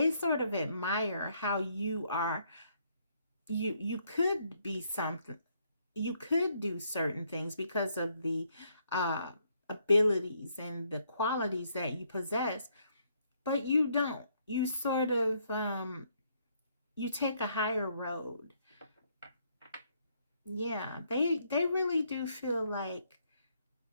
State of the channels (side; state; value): both; inverted; correlation -0.71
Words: sort of admire how you are. You could be something. You could do certain things because of the uh, abilities and the qualities that you possess, but you don't. You sort of you take a higher road. Yeah, they really do feel like